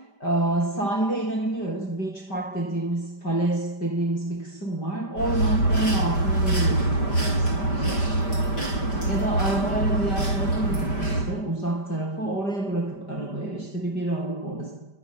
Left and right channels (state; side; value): late; right; 5.1 ms